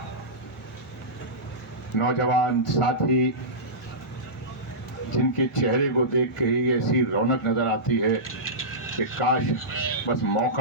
नौजवान साथी, जिनके चेहरे को देख के ही ऐसी रौनक नजर आती है कि काश बस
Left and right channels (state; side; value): normal; both; correlation -0.17